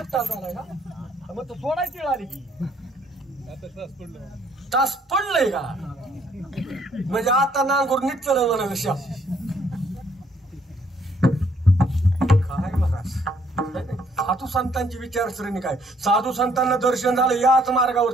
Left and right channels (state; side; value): normal; both; correlation 0.66